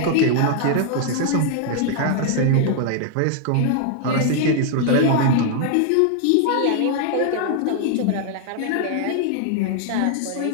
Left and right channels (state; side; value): different; both; correlation 0.00